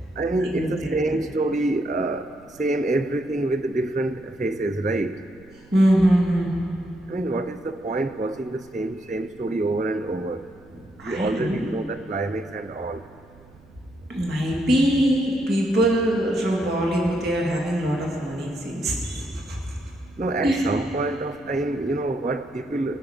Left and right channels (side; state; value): right; noise; rumble, 25 dB below the sound